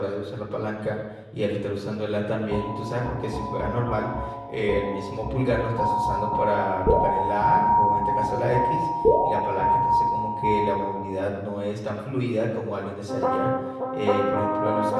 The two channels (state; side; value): identical; both; correlation 1.00